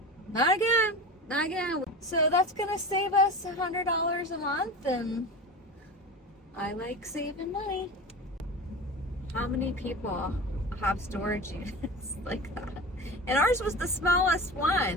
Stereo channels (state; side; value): normal; both; correlation 0.30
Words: Not again. Not again. So that's gonna save us $100 a month, and I like saving money. How many people have storage units like that? And ours was the smallest